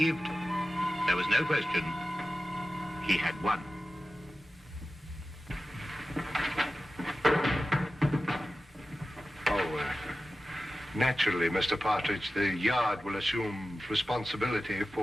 there was no question he had won. Naturally, Mr. Partridge, the yard will assume responsibility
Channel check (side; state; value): both; normal; correlation 0.94